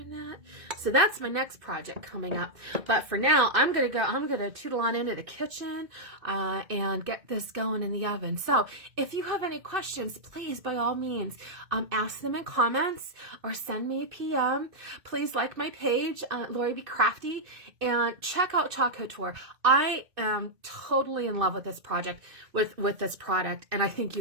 that? So that's my next project coming up. But for now, I'm going to tootle on into the kitchen and get this going in the oven. So if you have any questions, please, by all means, ask them in comments or send me a PM. Please like my page, Lori Be Crafty, and check out Chalk Couture. I am totally in love with this project, with this product, and I think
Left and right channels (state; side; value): late; left; 2.6 ms